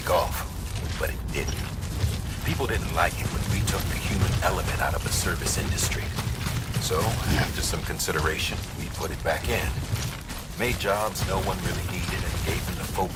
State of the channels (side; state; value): both; identical; correlation 1.00